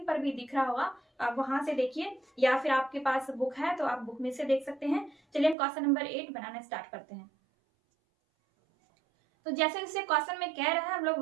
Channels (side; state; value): left; drops out; at 5.6 s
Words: पर भी दिख रहा होगा, आप वहां से देखिए या फिर आपके पास बुक है तो आप बुक में से देख सकते हैं। चलिए हम क्वेश्चन नंबर 8 बनाना स्टार्ट करते हैं। तो जैसे जैसे क्वेश्चन में कह रहा है हम लोग